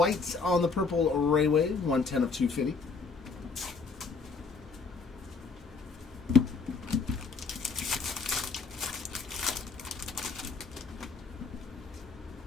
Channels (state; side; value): quieter; right; 4.7 dB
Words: on the Purple Railway, 110 of 250.